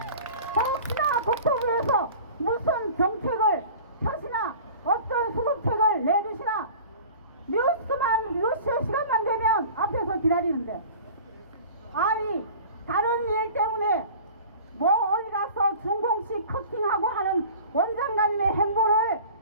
혹시나 국토부에서 무슨 정책을 펴시나 어떤 수습책을 내주시나 뉴스 시간만 되면 앞에서 기다리는데 아니 다른 일 때문에 뭐 어디 가서 중공식 커팅하고 하는 원장관님의 행보를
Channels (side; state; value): both; inverted; correlation -0.41